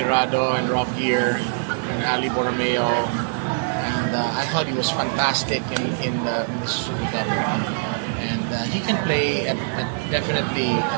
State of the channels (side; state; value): left; silent; digital silence